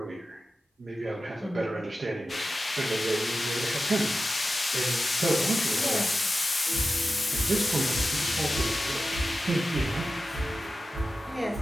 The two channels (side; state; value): both; normal; correlation 0.93